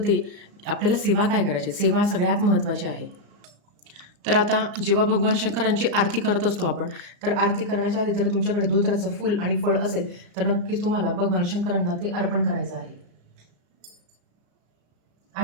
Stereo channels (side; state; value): left; late; 34 ms